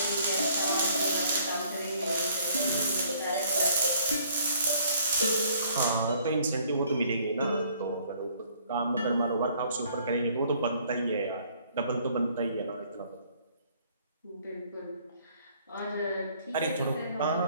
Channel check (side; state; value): both; inverted; correlation -0.60